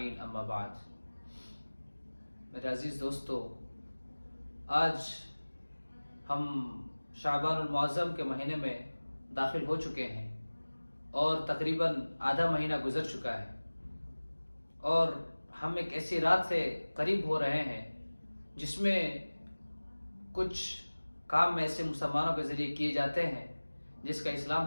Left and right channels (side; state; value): both; inverted; correlation -1.00